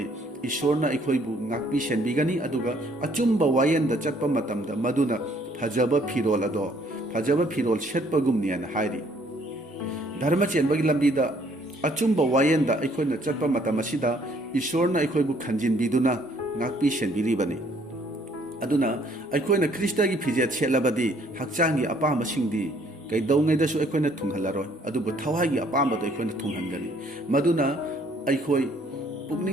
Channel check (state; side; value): normal; both; correlation 0.63